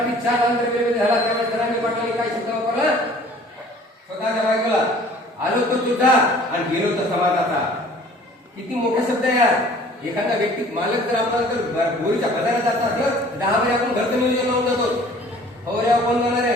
4 आंध्र झाला त्यावेळेस जरांगे पाटलांनी काय शब्द वापरला? स्वतःच्या बायकोला आलो तो तुझा आणि गेलो तो समाजाचा. किती मोठा शब्द आहे यार. एखादा व्यक्ती मालक जर आपल्याला जर बोरीच्या बाजारात जात असलं 10 वेळा आपण घरचं नियोजन लावून जातो. फवाऱ्या कोण जाणार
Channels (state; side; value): normal; both; correlation 0.51